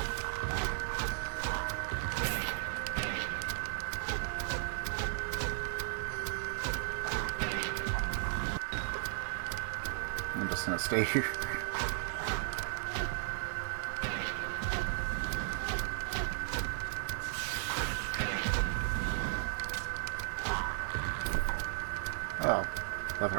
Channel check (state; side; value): silent; left; digital silence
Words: I'm just gonna stay here. Oh, leather